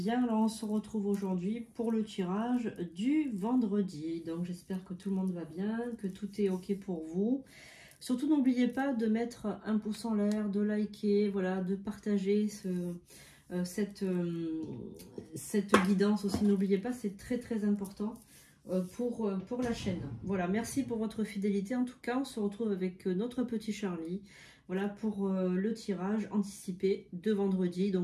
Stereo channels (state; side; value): identical; both; correlation 1.00